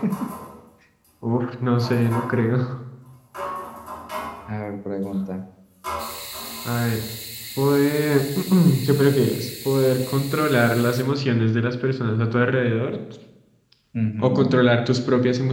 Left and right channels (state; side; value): identical; both; correlation 1.00